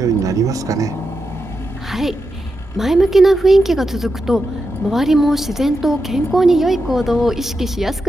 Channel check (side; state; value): both; normal; correlation 0.88